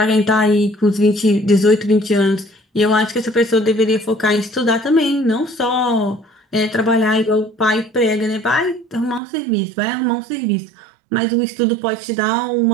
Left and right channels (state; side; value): drops out; left; at 9.2 s